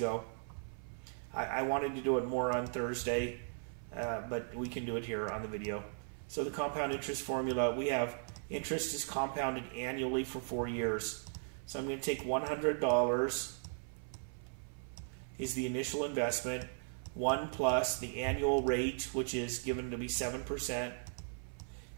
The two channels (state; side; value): silent; left; 53 dB below the other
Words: I wanted to do it more on Thursday, but we can do it here on the video. So the compound interest formula, we have interest is compounded annually for 4 years. So I'm going to take $100 is the initial investment, 1 plus the annual rate, which is given to be 7%, and